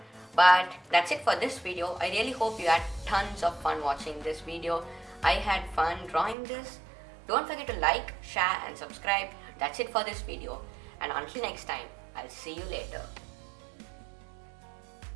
But that's it for this video. I really hope you had tons of fun watching this video. I had fun drawing this. Don't forget to like, share and subscribe. That's it for this video. And until next time, I'll see you later.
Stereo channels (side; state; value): left; drops out; at 6.4 s